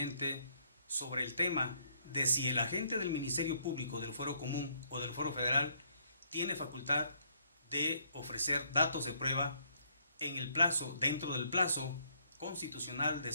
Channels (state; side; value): inverted; both; correlation -0.69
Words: sobre el tema de si el agente del Ministerio Público del Fuero Común o del Fuero Federal tiene facultad de ofrecer datos de prueba en el plazo, dentro del plazo constitucional de